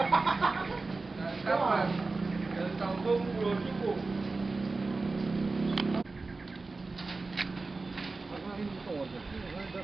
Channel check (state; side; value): quieter; left; 3.7 dB